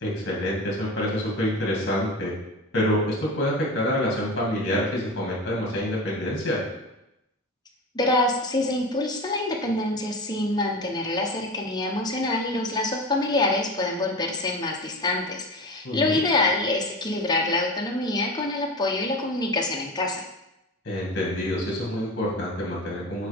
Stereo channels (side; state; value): both; normal; correlation 0.28